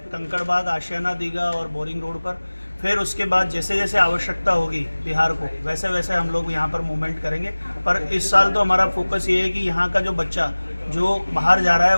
कंकड़बाग, आशियाना, दीघा और बोरिंग रोड पर। फिर उसके बाद जैसे जैसे आवश्यकता होगी बिहार को वैसे वैसे हम लोग यहाँ पर मूवमेंट करेंगे। पर इस साल तो हमारा फोकस ये है कि यहाँ का जो बच्चा जो बाहर जा रहा है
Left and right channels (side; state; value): both; inverted; correlation -1.00